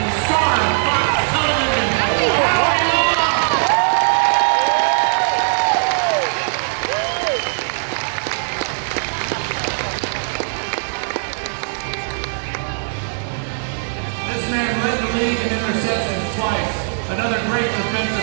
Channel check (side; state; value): left; silent; digital silence